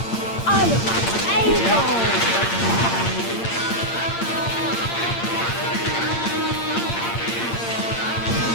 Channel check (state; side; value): late; right; 8.7 ms